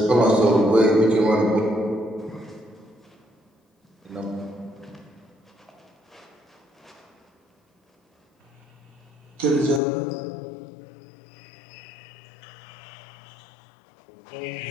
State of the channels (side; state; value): right; drops out; at 9.8 s